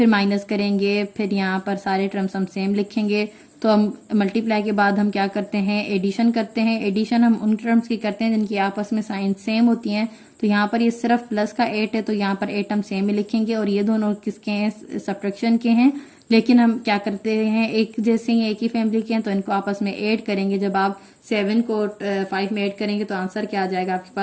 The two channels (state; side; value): identical; both; correlation 1.00